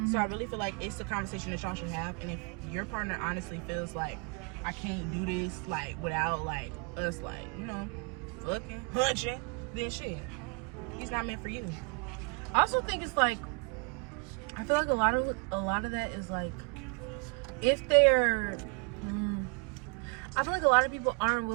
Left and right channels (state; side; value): quieter; left; 35.0 dB